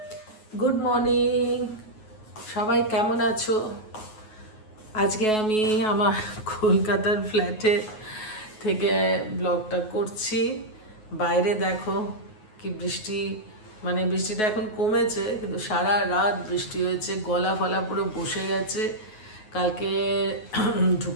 গুড মর্নিং, সবাই কেমন আছো? আজকে আমি আমার কলকাতার ফ্ল্যাটে থেকে ব্লগটা করছি। বাইরে দেখো কি বৃষ্টি, মানে বৃষ্টিটা এখন কমেছে, কিন্তু সারা রাত বৃষ্টি হয়েছে। গলা ফলা পুরো বসে গেছে। কালকে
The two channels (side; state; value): right; late; 9.3 ms